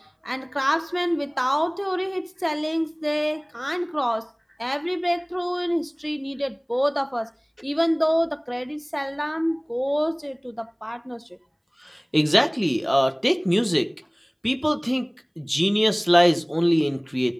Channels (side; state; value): both; identical; correlation 1.00